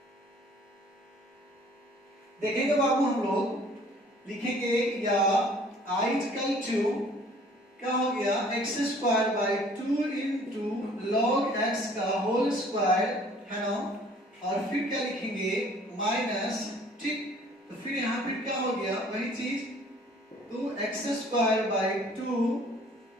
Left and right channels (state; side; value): normal; both; correlation 0.55